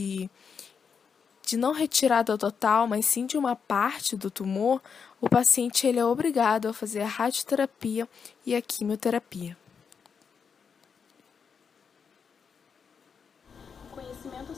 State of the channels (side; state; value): right; quieter; 6.3 dB